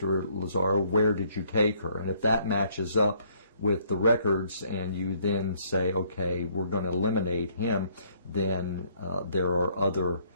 Lazzaro, where did you take her? And if that matches up with the records and you then say, okay, we're going to eliminate him, then there are other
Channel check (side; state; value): both; inverted; correlation -0.65